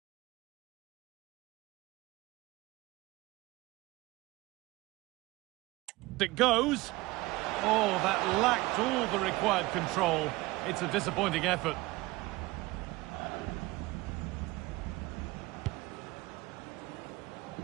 It goes. Oh, that lacked all the required control. It's a disappointing effort.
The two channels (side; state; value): left; quieter; 20.6 dB